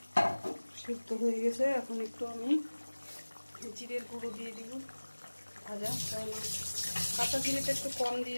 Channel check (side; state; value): both; inverted; correlation -1.00